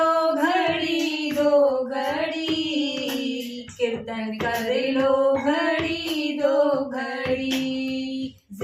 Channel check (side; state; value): both; identical; correlation 1.00